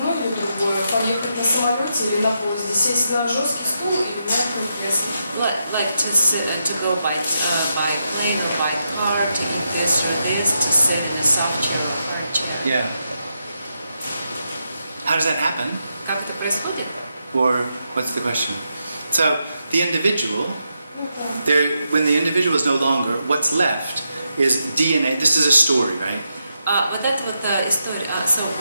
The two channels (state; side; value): inverted; both; correlation -0.84